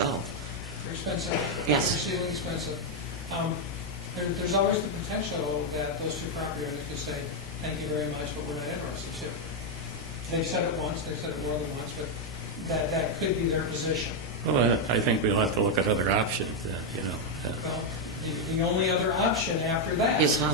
They're expensive. Yes. They're exceedingly expensive. There's always the potential that those 2 property owners could say, thank you very much, but we're not interested to. They've said it once, they've said it more than once, but that could be their position. Well, I think we'll have to look at other options, Well, the only other option after that. Is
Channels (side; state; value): both; normal; correlation 0.01